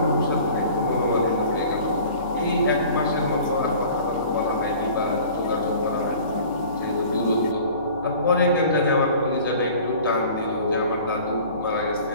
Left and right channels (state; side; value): inverted; both; correlation -0.46